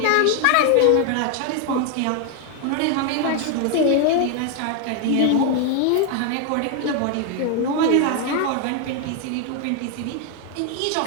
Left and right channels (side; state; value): both; different; correlation 0.01